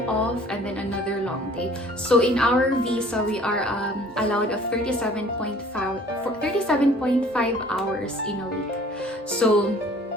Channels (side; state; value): both; normal; correlation 0.52